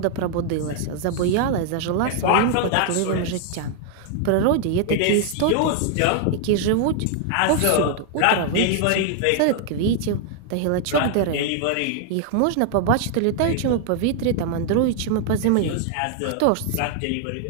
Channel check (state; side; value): different; both; correlation 0.00